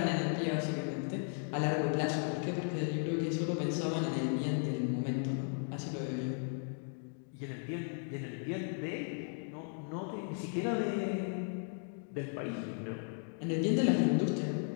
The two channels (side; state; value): right; silent; 54 dB below the other